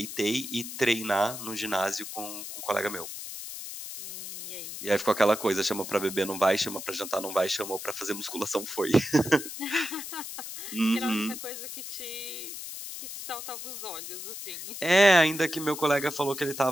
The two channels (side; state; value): left; noise; hiss, 9 dB below the sound